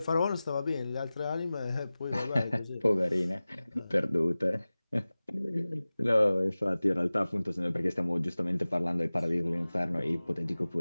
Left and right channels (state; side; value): inverted; both; correlation -0.97